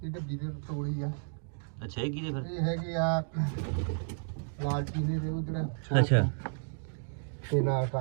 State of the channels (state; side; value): silent; left; digital silence